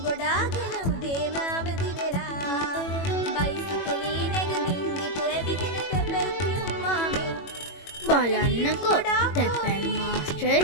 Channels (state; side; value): late; right; 21 ms